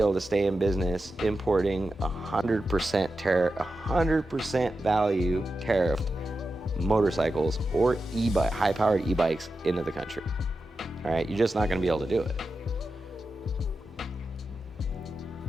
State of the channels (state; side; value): normal; both; correlation 0.91